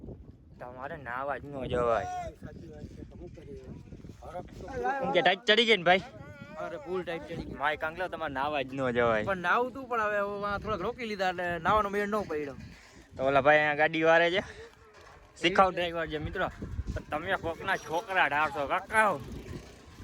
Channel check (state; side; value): identical; both; correlation 1.00